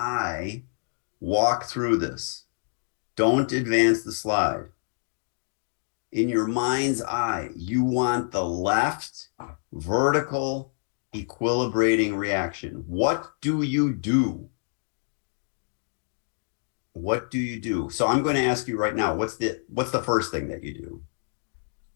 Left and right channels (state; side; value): silent; right; digital silence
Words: walk through this. Don't advance the slide. In your mind's eye, you want the left vertical equilibrating reaction. What do you do? What do you do? So I'm going to ask you right now, what's the first thing that you do?